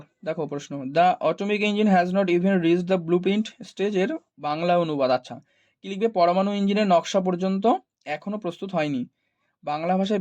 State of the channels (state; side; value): identical; both; correlation 1.00